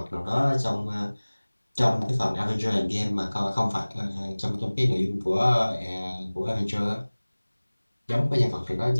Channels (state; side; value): inverted; both; correlation -1.00